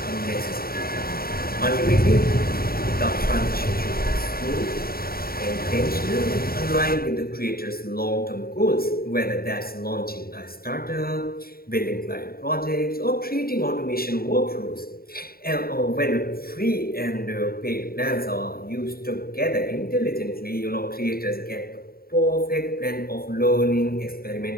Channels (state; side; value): late; right; 0.43 ms